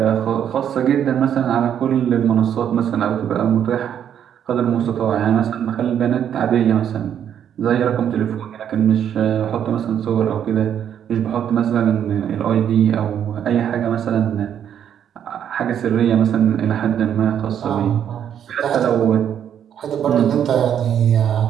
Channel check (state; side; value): quieter; left; 9.3 dB